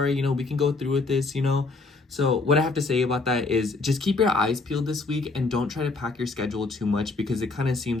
you know, we can go through with this, you know. So what I have to say about that is just keep your eyes peeled this week, and don't try to pack your schedule too much, because it kind of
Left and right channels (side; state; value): right; quieter; 3.6 dB